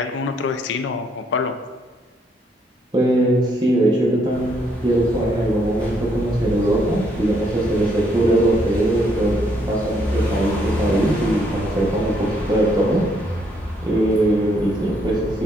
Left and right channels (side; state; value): both; normal; correlation 0.71